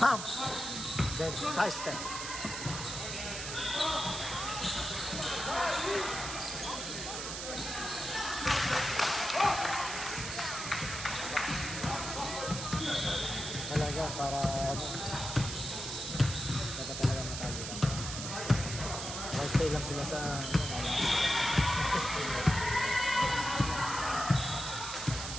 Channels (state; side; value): noise; right; hiss, 6 dB below the sound